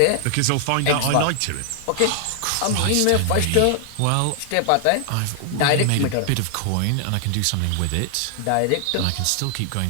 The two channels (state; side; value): different; both; correlation 0.00